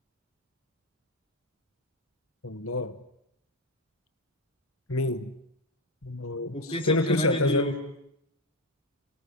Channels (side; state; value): both; normal; correlation 0.09